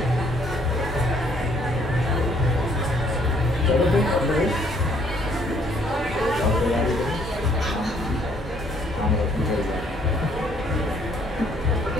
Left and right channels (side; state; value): both; normal; correlation 0.65